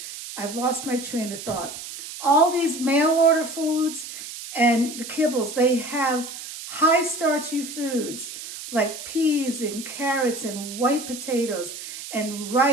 I've lost my train of thought. All these mail order foods and the kibbles, they have high starchy foods like peas and carrots and white potatoes and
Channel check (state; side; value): noise; right; hiss, 10 dB below the sound